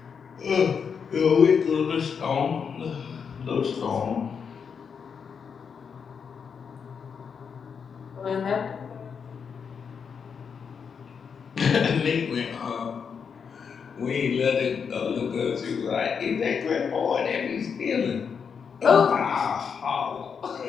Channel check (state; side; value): quieter; right; 6.4 dB